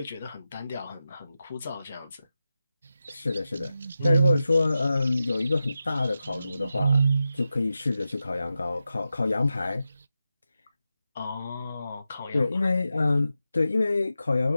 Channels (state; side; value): inverted; both; correlation -0.91